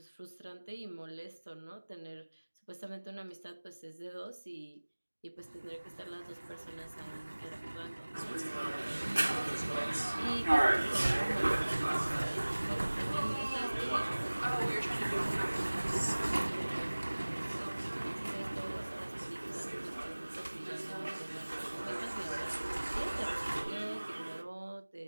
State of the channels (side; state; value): both; inverted; correlation -1.00